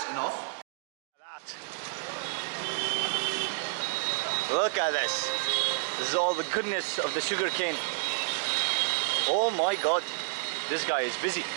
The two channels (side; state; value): left; silent; digital silence